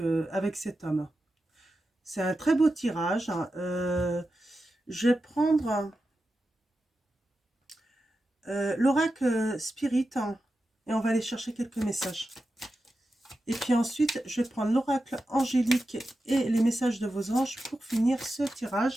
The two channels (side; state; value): both; normal; correlation 0.91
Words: cet homme. C'est un très beau tirage, hein. Je vais prendre l'oracle Spirit, hein, et on va aller chercher quelques messages. Et puis ensuite, je vais prendre l'oracle angélique et les messages de vos anges pour finir ce